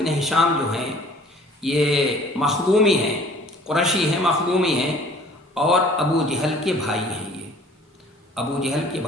ہشام جو ہیں یہ مخزومی ہیں، قریشی ہیں، مخزومی ہیں، اور ابو جہل کے بھائی ہیں۔ یہ ابو جہل کے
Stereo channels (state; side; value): normal; both; correlation 0.52